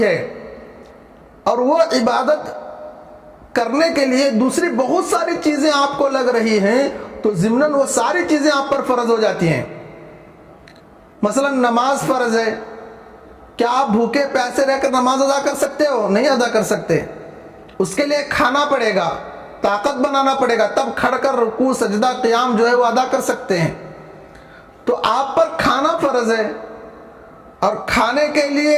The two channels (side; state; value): both; identical; correlation 1.00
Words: ہے، اور وہ عبادت کرنے کے لیے دوسری بہت ساری چیزیں آپ کو لگ رہی ہیں، تو ضمناً وہ ساری چیزیں آپ پر فرض ہو جاتی ہیں۔ مثلا نماز فرض ہے، کیا آپ بھوکے پیاسے رہ کر نماز ادا کر سکتے ہو؟ نہیں ادا کر سکتے۔ اس کے لیے کھانا پڑے گا، طاقت بنانا پڑے گا، تب کھڑ کر رکوع سجدہ قیام جو ہے وہ ادا کر سکتے ہیں۔ تو آپ پر کھانا فرض ہے، اور کھانے کے لیے